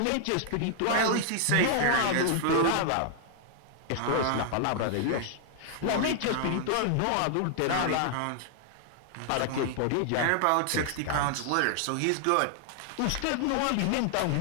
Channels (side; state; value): both; different; correlation -0.01